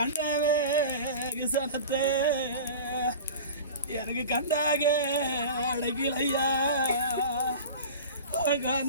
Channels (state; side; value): inverted; both; correlation -0.34